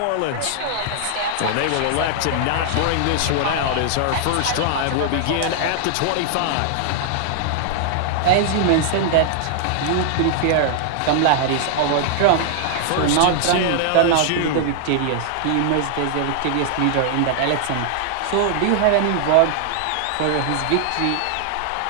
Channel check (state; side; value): different; both; correlation -0.01